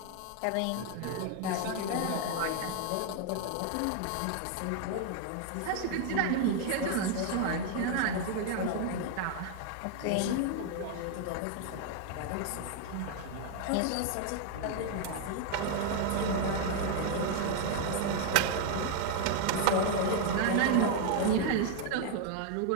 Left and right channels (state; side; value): different; both; correlation 0.00